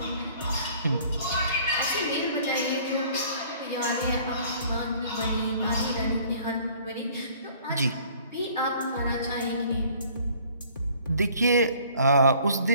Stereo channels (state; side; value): inverted; both; correlation -0.54